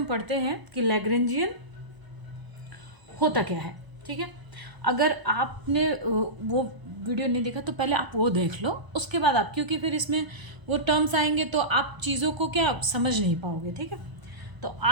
पढ़ते हैं कि लैग्रेंजियन होता क्या है। ठीक है, अगर आपने वो वीडियो नहीं देखा तो पहले आप वो देख लो, उसके बाद आप, क्योंकि फिर इसमें वो टर्म्स आएंगे तो आप चीज़ों को क्या समझ नहीं पाओगे। ठीक है, तो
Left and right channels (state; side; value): late; left; 1.0 ms